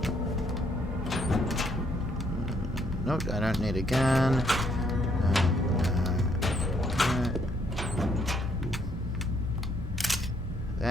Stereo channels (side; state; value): both; normal; correlation 0.70